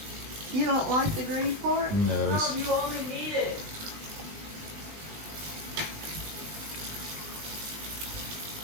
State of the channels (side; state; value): left; late; 20 ms